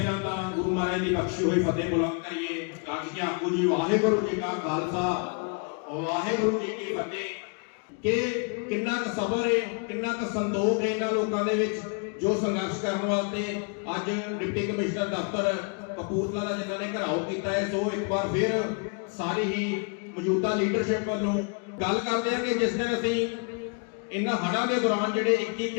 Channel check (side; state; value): right; quieter; 37.3 dB